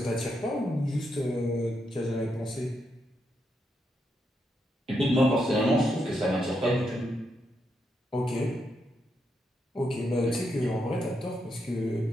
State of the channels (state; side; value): normal; both; correlation 0.81